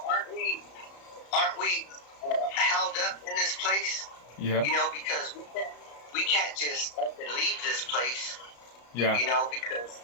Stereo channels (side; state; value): right; late; 34 ms